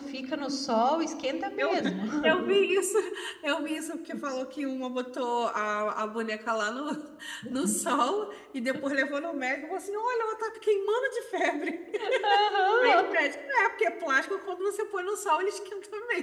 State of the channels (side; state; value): both; identical; correlation 1.00